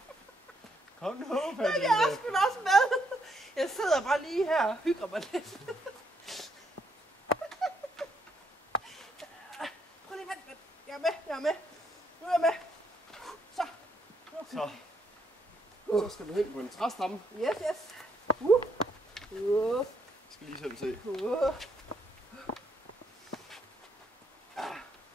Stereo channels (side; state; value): both; normal; correlation 0.75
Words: Kom nu, Jeg er sgu da også med. Jeg sidder bare lige her og hygger mig lidt. Prøv lige vent. Jeg er med. Nu er jeg med. Så. Så skal du hen på en træstamme. Yes. Jeg skal lige selv se. Så,